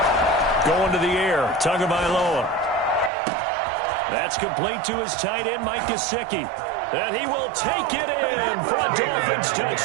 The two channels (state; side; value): drops out; left; at 3.1 s